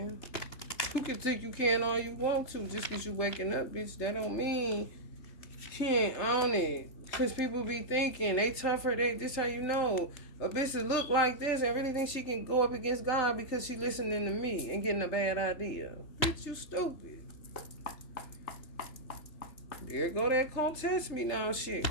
You can think you can all you want to. Just because you waking up, bitch, that don't mean she ain't on it. Because people be thinking they tougher. This how you know. A bitch that look like this and really think she can go up against God because she listening to me and getting a bad idea. Bitch, you stupid. There go that can't test me now shit.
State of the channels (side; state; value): right; late; 3.4 ms